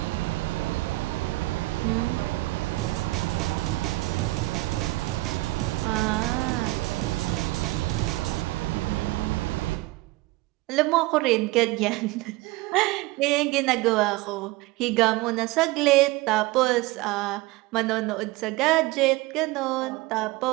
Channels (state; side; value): quieter; left; 20.2 dB